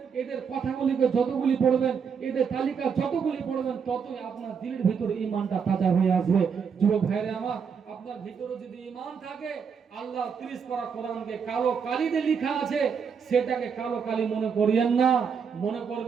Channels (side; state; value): left; quieter; 6.5 dB